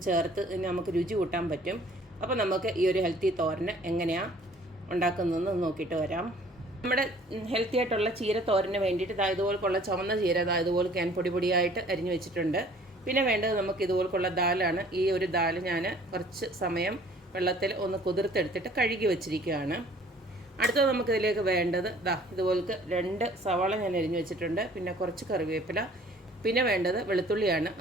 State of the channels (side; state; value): both; normal; correlation 0.54